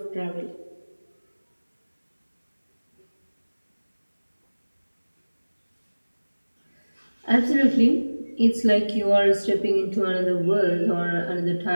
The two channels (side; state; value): both; inverted; correlation -1.00